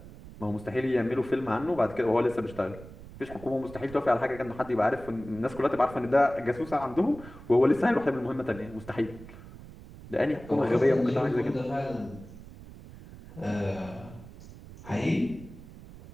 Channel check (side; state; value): right; noise; rumble, 17 dB below the sound